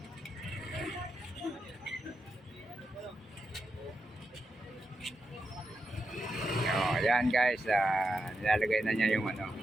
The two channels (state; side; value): normal; both; correlation 0.86